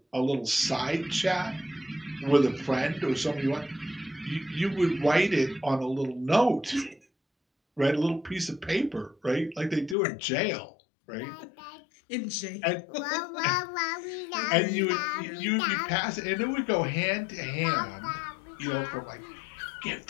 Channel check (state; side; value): drops out; right; at 10.0 s